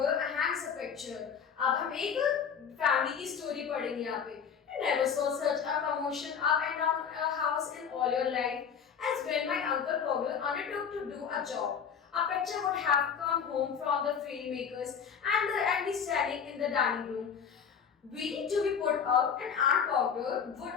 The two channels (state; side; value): quieter; right; 7.1 dB